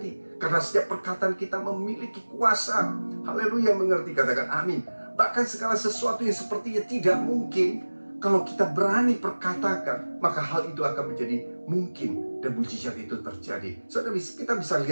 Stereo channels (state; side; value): inverted; both; correlation -1.00